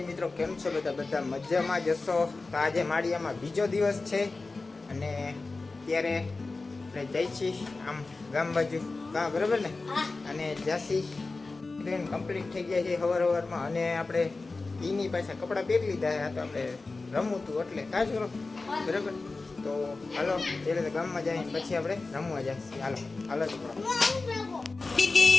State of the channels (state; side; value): quieter; right; 3.6 dB